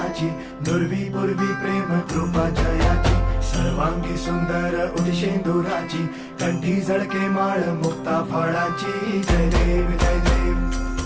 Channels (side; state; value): both; identical; correlation 1.00